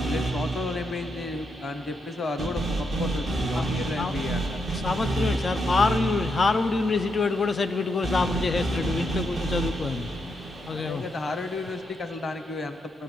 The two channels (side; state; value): both; normal; correlation 0.81